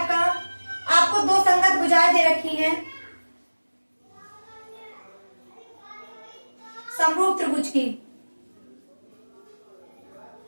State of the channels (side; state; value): both; inverted; correlation -1.00